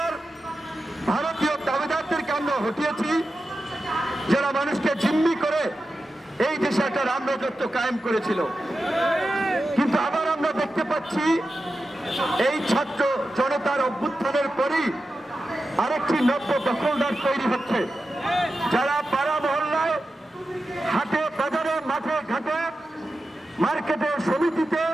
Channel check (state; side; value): normal; both; correlation 0.92